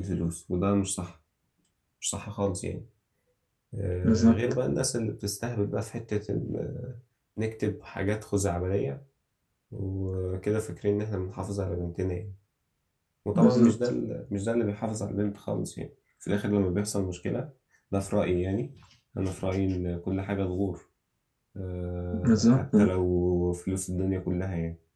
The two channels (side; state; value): both; identical; correlation 1.00